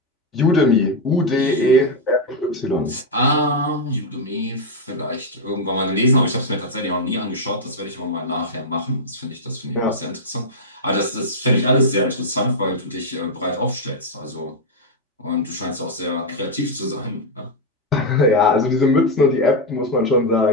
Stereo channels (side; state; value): both; normal; correlation 0.00